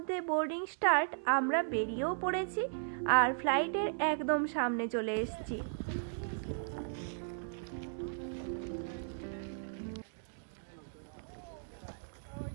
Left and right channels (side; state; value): left; silent; digital silence